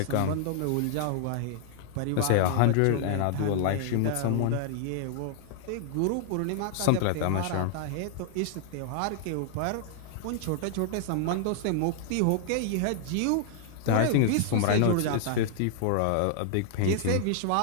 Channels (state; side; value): different; both; correlation -0.01